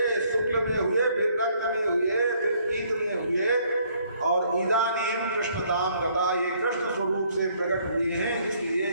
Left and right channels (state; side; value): inverted; both; correlation -0.65